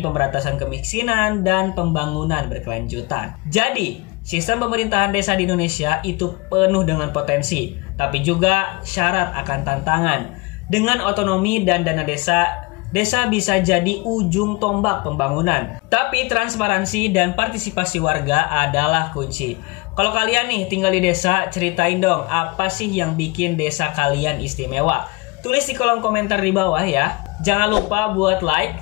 kemiskinan dan pembangunan berkelanjutan. Jadi, sistem pemerintahan desa di Indonesia itu penuh dengan potensi, tapi juga syarat akan tantangan. Dengan otonomi dan dana desa, desa bisa jadi ujung tombak pembangunan. Tapi transparansi dan partisipasi warga adalah kunci. Kalau kalian nih tinggal di desa, ceritain dong apa sih yang bikin desa kalian istimewa. Tulis di kolom komentar di bawah ya. Jangan lupa buat like,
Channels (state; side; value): quieter; right; 25.5 dB